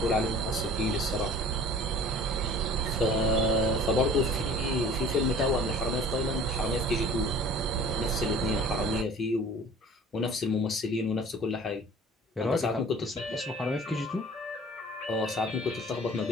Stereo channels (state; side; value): normal; both; correlation 0.46